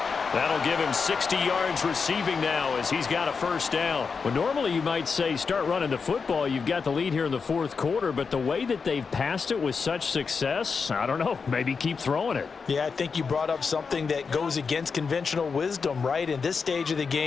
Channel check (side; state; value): right; quieter; 5.3 dB